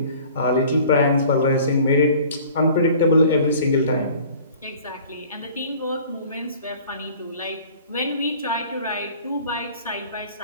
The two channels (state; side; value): inverted; both; correlation -0.48